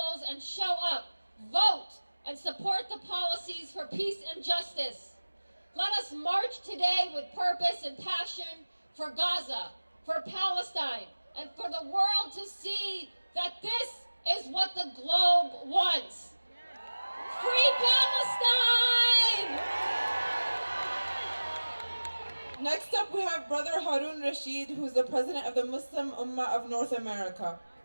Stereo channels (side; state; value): both; inverted; correlation -1.00